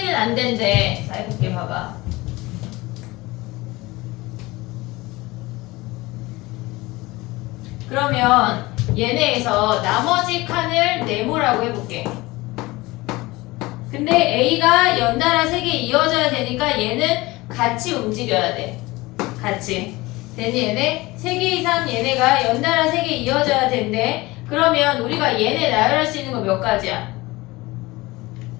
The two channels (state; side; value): quieter; right; 21.1 dB